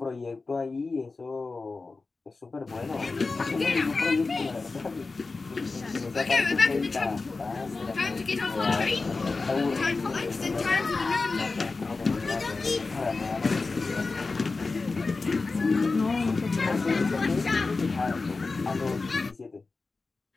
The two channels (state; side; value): quieter; right; 3.9 dB